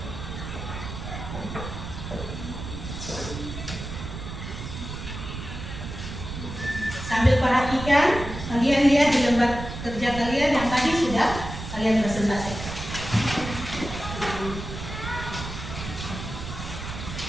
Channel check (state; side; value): noise; right; rumble, 8 dB below the sound